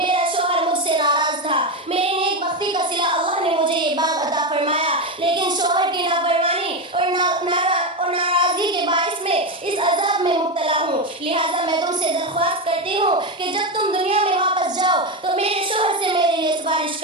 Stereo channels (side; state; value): both; normal; correlation 0.12